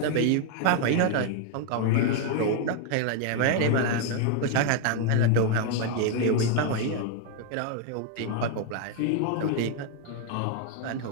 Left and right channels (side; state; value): both; different; correlation 0.01